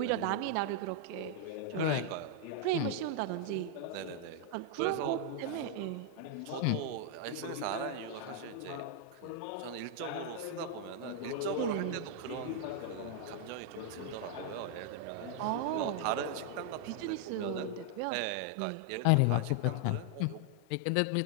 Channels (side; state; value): both; different; correlation 0.00